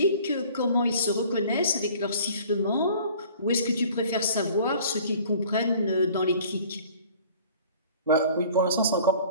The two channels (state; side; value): inverted; both; correlation -0.50